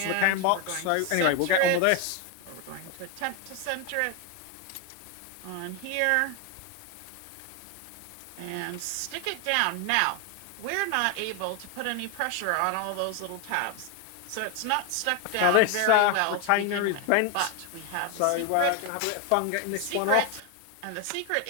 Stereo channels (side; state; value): both; different; correlation 0.01